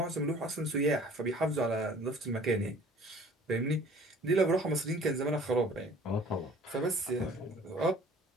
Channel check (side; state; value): both; normal; correlation 0.50